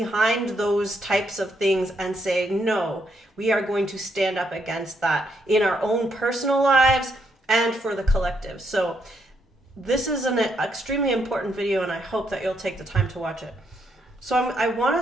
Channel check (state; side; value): normal; both; correlation 0.76